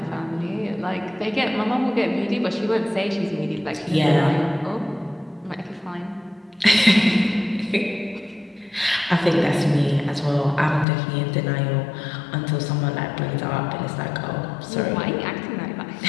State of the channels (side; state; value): right; drops out; at 10.9 s